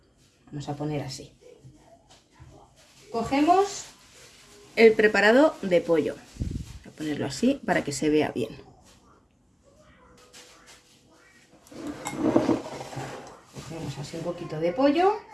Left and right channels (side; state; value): both; identical; correlation 1.00